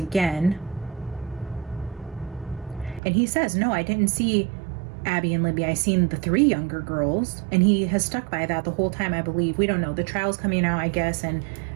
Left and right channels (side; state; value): left; drops out; at 3.0 s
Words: And he says, no, I didn't see Abby and Libby. I seen the 3 younger girls. And he has stuck by that the whole time, I believe. We don't know. The trial's coming out, I guess. And